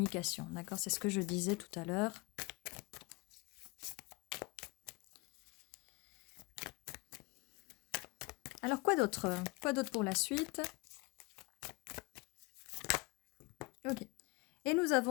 D'accord? C'est ce que je disais tout à l'heure. Alors, quoi d'autre? Quoi d'autre pour la suite? Ok. Et nous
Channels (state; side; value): quieter; right; 26.0 dB